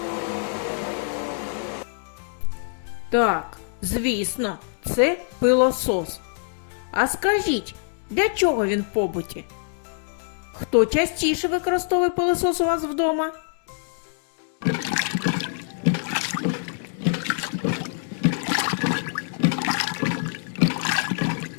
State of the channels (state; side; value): silent; right; digital silence